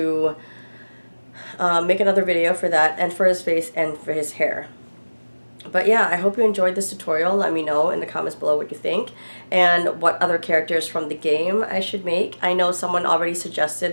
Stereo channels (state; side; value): inverted; both; correlation -1.00